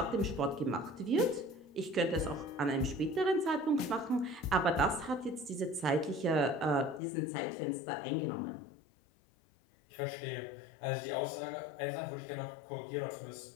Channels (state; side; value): drops out; right; at 7.0 s